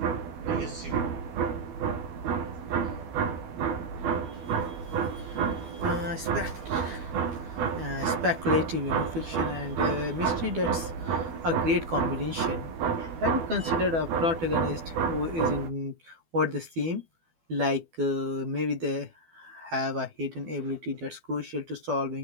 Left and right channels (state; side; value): late; left; 12 ms